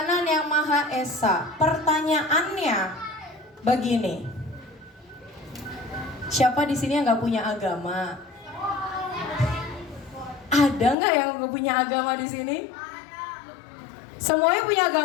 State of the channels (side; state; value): right; drops out; at 11.0 s